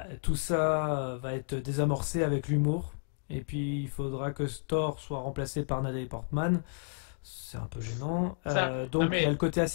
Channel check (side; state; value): right; silent; digital silence